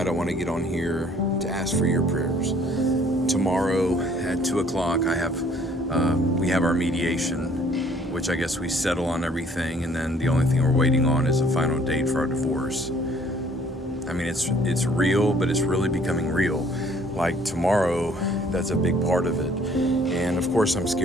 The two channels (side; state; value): both; normal; correlation 0.59